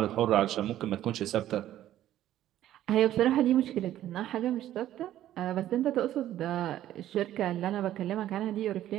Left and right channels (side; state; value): left; quieter; 12.7 dB